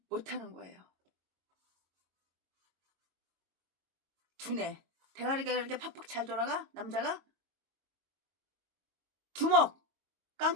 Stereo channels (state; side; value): late; left; 22 ms